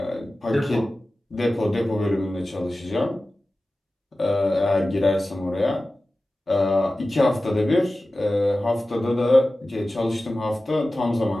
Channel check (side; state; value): both; normal; correlation 0.95